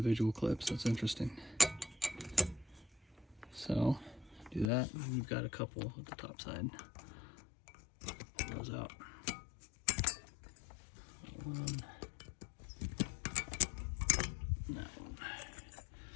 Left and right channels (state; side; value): drops out; right; at 4.7 s